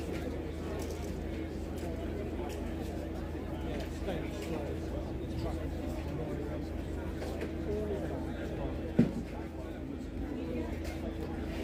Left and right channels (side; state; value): both; identical; correlation 1.00